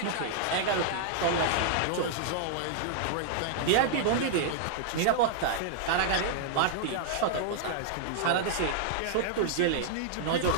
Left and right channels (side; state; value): both; different; correlation -0.01